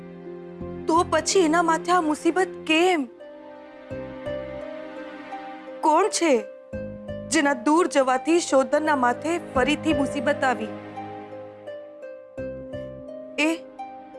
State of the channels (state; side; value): identical; both; correlation 1.00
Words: તો પછી એના માથે આ મુસીબત કેમ? કોણ છે જેના દૂર જવાથી શોધનના માથે ફરીથી મુસીબત આવી? એ